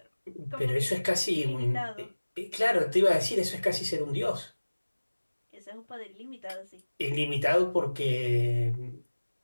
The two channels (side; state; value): both; inverted; correlation -1.00